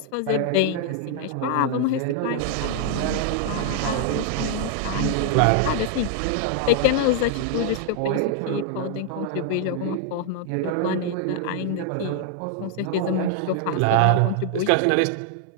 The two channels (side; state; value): both; different; correlation 0.00